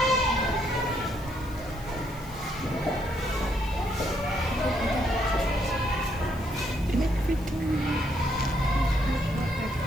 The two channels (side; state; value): left; noise; hiss, 22 dB below the sound